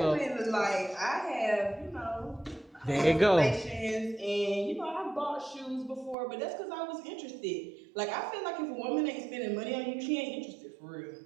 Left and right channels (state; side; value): drops out; left; at 6.2 s